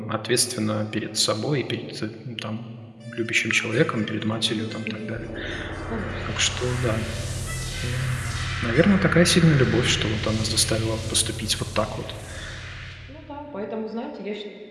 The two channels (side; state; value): both; identical; correlation 1.00